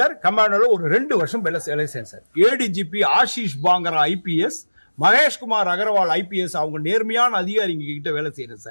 கமாண்டோல ஒரு 2 வருஷம் வேலை செய்யறேன் sir. ADGP Ashish Pangra IPS, Maheshkumar Agarwal IPS, அவங்க நேர்மையான அதிகாரிங்க கிட்ட வேலை செய்யறேன்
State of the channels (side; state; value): both; inverted; correlation -1.00